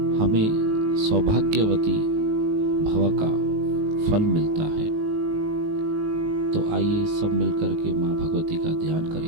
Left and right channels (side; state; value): left; late; 19 ms